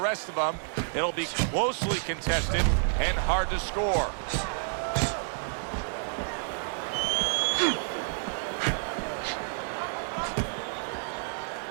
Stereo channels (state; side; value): silent; left; 58 dB below the other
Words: of them, it'll be closely contested and hard to score.